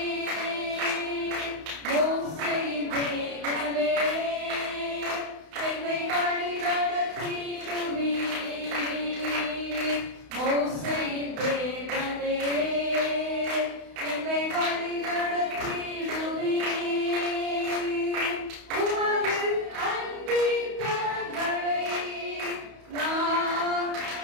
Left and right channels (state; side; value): late; left; 31 ms